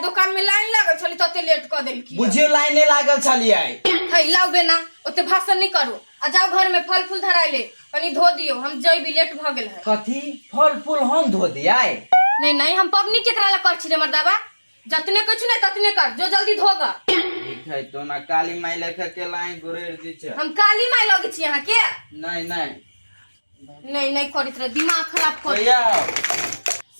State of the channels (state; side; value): inverted; both; correlation -1.00